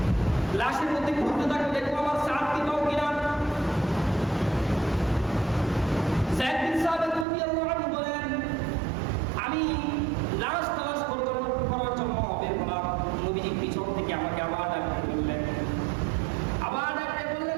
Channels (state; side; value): drops out; left; at 7.2 s